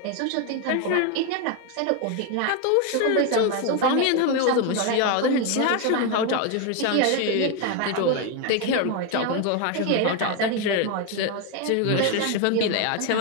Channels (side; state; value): both; different; correlation 0.02